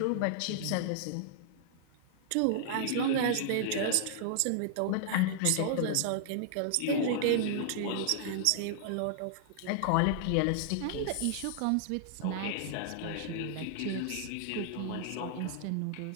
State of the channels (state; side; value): different; both; correlation -0.01